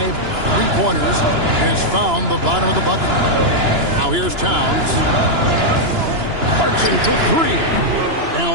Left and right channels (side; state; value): left; late; 2.9 ms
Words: 3-pointers has found the bottom of the bucket. Now here's Towns. Clarkson for 3.